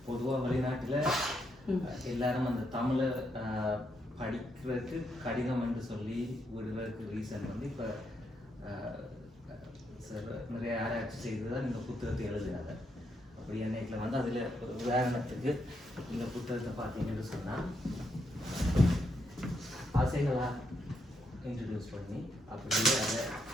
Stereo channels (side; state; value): both; normal; correlation 0.79